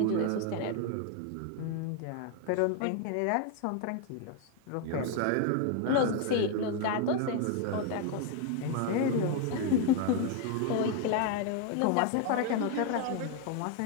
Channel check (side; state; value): both; different; correlation 0.01